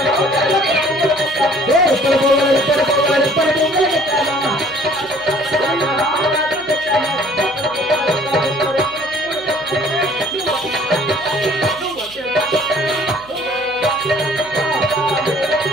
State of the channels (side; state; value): right; noise; hum, 24 dB below the sound